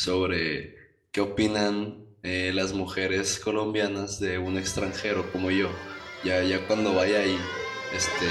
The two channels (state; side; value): identical; both; correlation 1.00